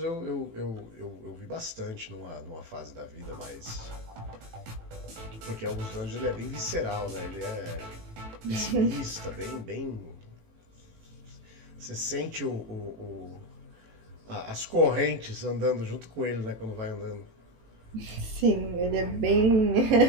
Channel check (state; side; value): late; left; 18 ms